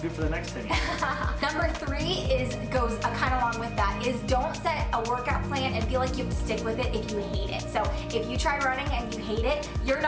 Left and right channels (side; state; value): both; identical; correlation 1.00